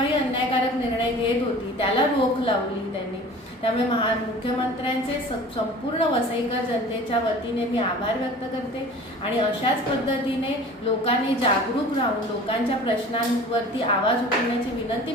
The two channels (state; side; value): normal; both; correlation 0.42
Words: अन्यायकारक निर्णय घेत होती त्याला रोख लावली त्यांनी. त्यामुळे मुख्यमंत्र्यांचे संपूर्ण वसईकर जनतेच्या वतीने मी आभार व्यक्त करते आणि अशाच पद्धतीने लोकांनी जागरूक राहून लोकांच्या प्रश्नांवरती आवाज उठवण्याची विनंती